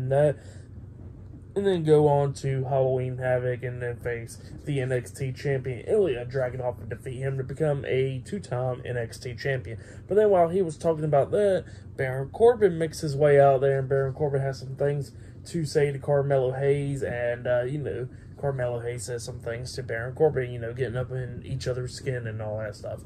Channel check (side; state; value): both; identical; correlation 1.00